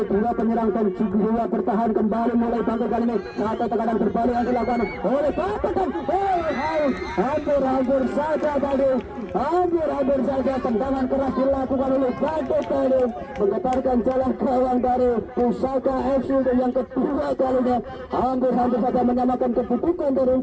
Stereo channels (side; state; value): both; identical; correlation 1.00